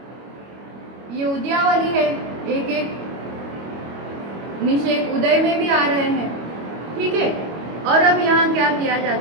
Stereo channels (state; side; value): late; left; 25 ms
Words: ये उद्यावली है, एक एक निषेक उदय में भी आ रहे हैं, ठीक है। और अब यहाँ क्या किया